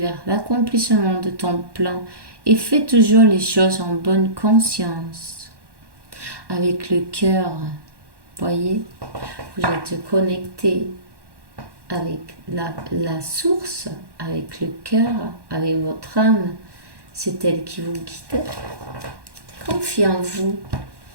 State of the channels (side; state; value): left; late; 1.1 ms